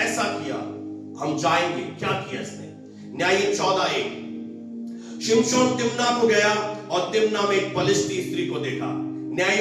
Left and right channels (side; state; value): both; identical; correlation 1.00